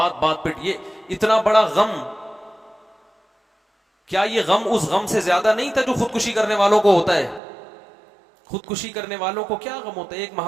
बात पे ये इतना बड़ा गम। क्या ये गम उस गम से ज्यादा नहीं था जो खुदकुशी करने वालों को होता है? खुदकुशी करने वालों को क्या गम होता है? एक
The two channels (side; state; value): left; drops out; at 7.4 s